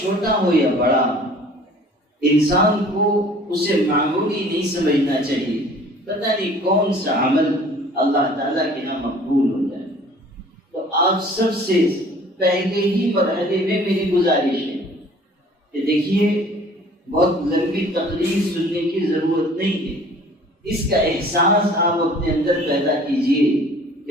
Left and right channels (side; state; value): both; normal; correlation 0.51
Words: ہو یا بڑا، انسان کو اسے معمولی نہیں سمجھنا چاہیے۔ پتہ نہیں کون سا عمل اللہ تعالیٰ کے یہاں مقبول ہو جائے۔ تو آپ سب سے پہلے ہی مرحلے میں میری گزارش ہے کہ دیکھیے، بہت لمبی تقریر سننے کی ضرورت نہیں ہے، اس کا احساس آپ اپنے اندر پیدا کیجئے